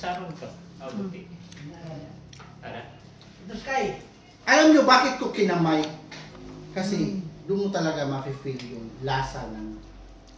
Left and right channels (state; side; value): identical; both; correlation 1.00